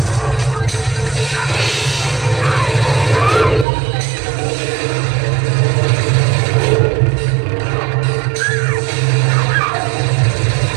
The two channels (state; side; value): drops out; left; at 3.7 s